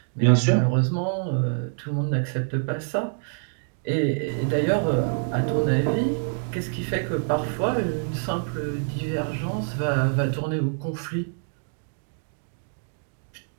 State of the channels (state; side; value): silent; left; digital silence